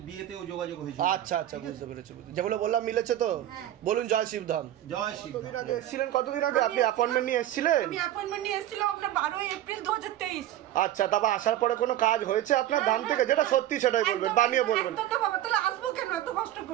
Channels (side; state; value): left; quieter; 12.9 dB